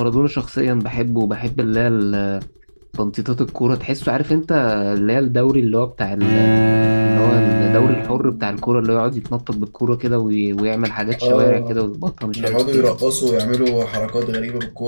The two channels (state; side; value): inverted; both; correlation -1.00